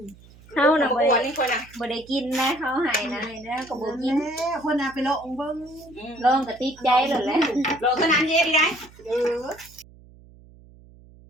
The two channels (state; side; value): noise; right; hum, 24 dB below the sound